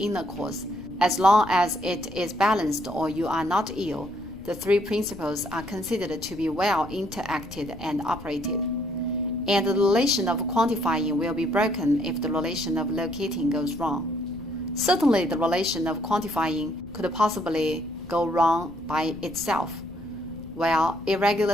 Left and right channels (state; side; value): noise; left; rumble, 17 dB below the sound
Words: cause. As long as it is balanced or you are not ill, the three principles are considered to be well interacted and operated. And the relation of quantifying will be broken if the relation of locating goes wrong. Certainly, the relation of quantifying could possibly go wrong by itself, while